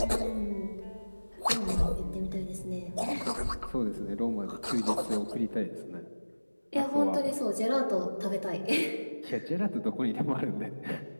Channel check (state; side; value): inverted; both; correlation -1.00